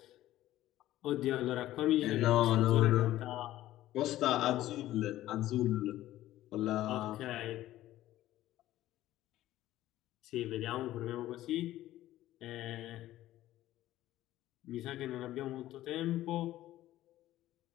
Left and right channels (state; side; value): quieter; right; 14.6 dB